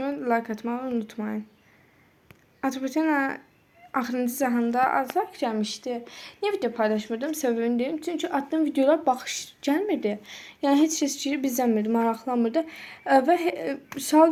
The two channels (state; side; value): identical; both; correlation 1.00